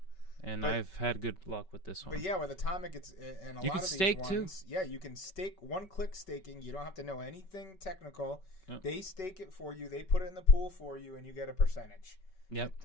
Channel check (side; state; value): right; late; 5.3 ms